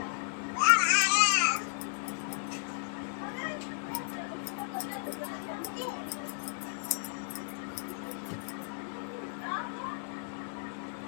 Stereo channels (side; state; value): right; silent; digital silence